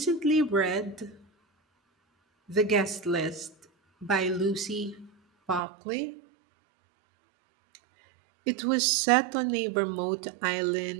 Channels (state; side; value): drops out; left; at 5.6 s